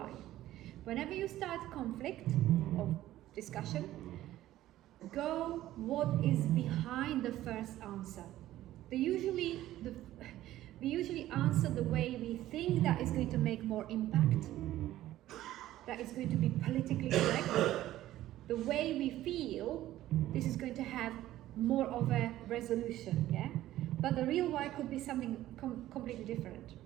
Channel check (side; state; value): left; quieter; 14.3 dB